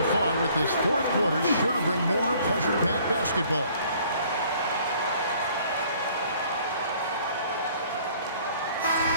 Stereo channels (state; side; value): inverted; both; correlation -0.57